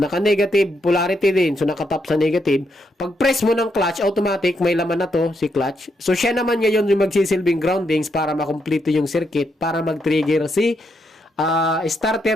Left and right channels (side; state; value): both; normal; correlation 0.79